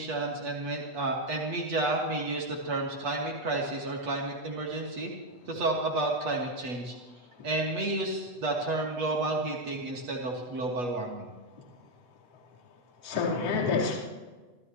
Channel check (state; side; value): late; left; 8.2 ms